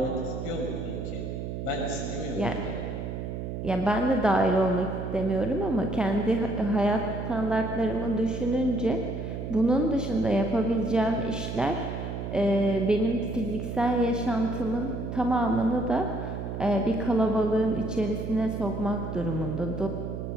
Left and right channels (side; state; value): right; noise; hum, 5 dB below the sound